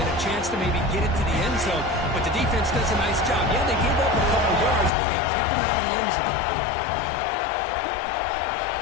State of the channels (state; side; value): drops out; right; at 4.9 s